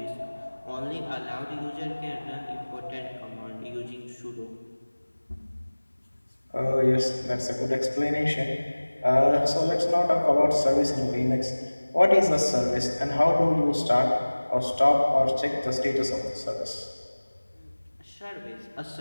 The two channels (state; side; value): inverted; both; correlation -1.00